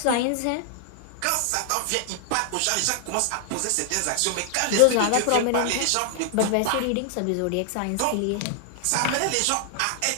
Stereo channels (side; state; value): both; different; correlation 0.00